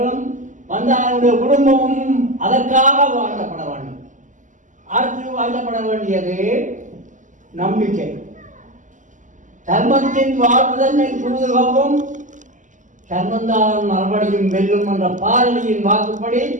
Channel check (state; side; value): late; left; 0.37 ms